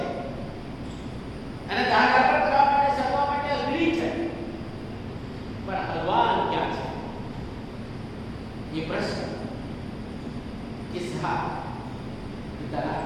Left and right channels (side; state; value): both; identical; correlation 1.00